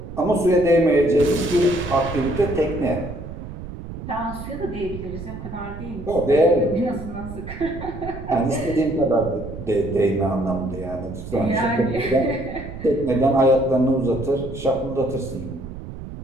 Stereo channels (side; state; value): right; noise; rumble, 10 dB below the sound